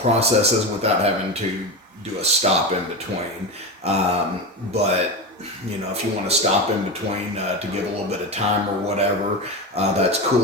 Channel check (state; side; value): normal; both; correlation 0.20